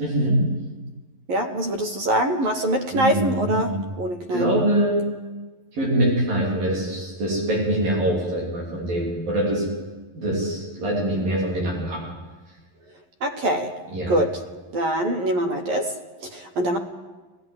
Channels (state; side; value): late; left; 11 ms